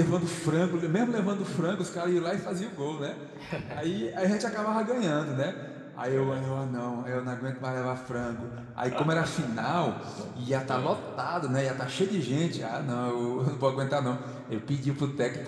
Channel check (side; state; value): both; identical; correlation 1.00